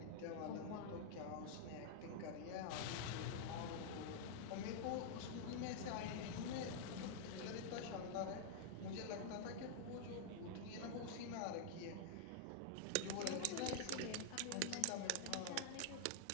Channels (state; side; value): different; both; correlation -0.01